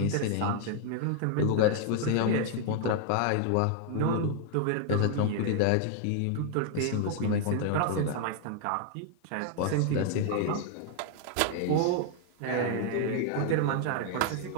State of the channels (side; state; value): both; different; correlation 0.00